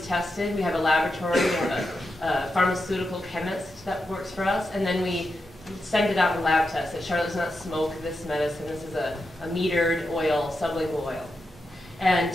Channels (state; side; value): normal; both; correlation 0.88